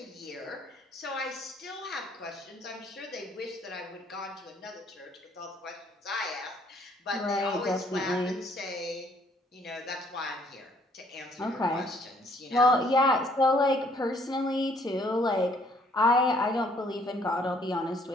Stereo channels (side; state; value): both; normal; correlation 0.63